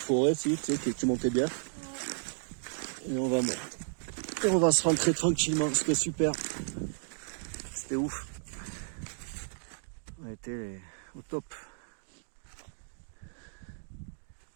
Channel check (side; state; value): left; silent; digital silence